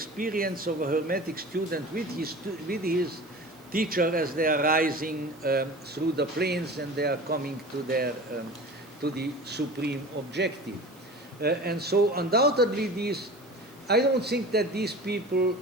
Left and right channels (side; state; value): right; noise; hiss, 28 dB below the sound